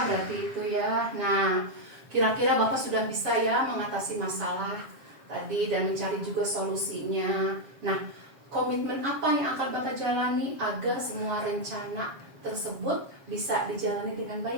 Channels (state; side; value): late; left; 7.4 ms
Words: berarti itu ya. Nah, kira-kira Bapak sudah bisa ya mengatasi masalah tadi dan mencari juga solusinya. Nah, komitmen apa yang akan Bapak jalani agar semua rencana tersebut bisa dijalani dengan